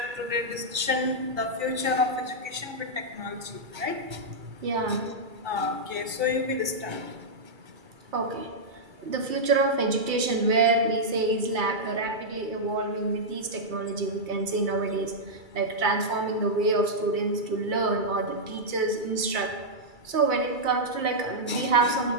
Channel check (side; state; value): left; late; 2.3 ms